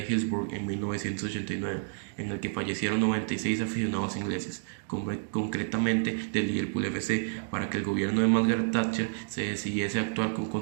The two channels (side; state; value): left; silent; digital silence